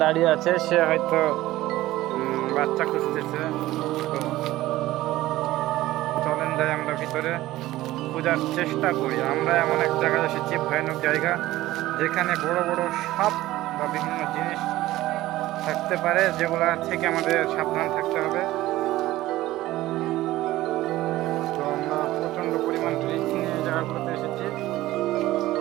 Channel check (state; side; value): quieter; left; 16.3 dB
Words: দাঁড়িয়ে আছে, সে হয়তো বাচ্চা খুঁজতেছে। তো চলেন যাই আমরা ভিতরে খোঁজার চেষ্টা করি। আমরা এমন এক জায়গায় এসেছি, ভয়ানক জায়গা, যেখানে বড় বড় সাপ বা বিভিন্ন জিনিস থাকতে পারে, যেগুলা থেকে আমাদের সাবধান থাকতে হবে। তো আমরা প্রচণ্ড পরিমাণ রিস্ক নিয়ে এই জায়গাগুলোতে এসেছি।